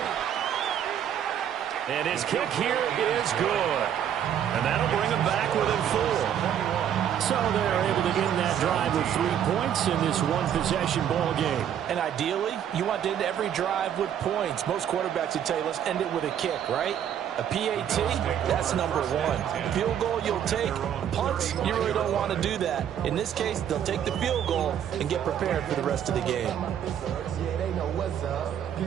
And his kick here is good. And that'll bring him back within 4. So they're able to end that drive with 3 points in this one-possession ball game. And ideally, you want to end every drive with points. Most quarterbacks would tell you, let's end it with a kick, right? A PAT, that's number 1. Field goal, you'll take. Punts, you really don't want to do that. In this case, they'll take the field goal and get prepared for the rest of the game.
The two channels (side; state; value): left; quieter; 9.5 dB